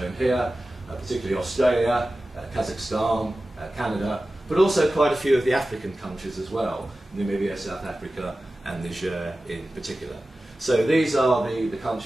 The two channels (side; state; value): both; normal; correlation 0.95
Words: here, particularly Australia, Kazakhstan, Canada, but also quite a few of the African countries as well, Namibia, South Africa, and Niger in particular. So these are the